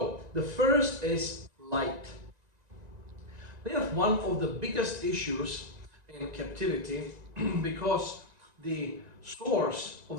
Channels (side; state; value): left; late; 1.9 ms